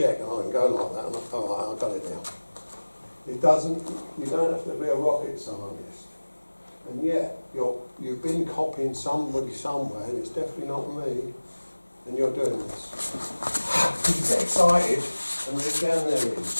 and I can go like that, and I've got it now. It doesn't, you don't have to be a rocket scientist. And yet, you've been copying somebody somewhere, and it's definitely not me, and you're doing this. You get excited, and it's down there,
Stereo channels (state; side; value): inverted; both; correlation -1.00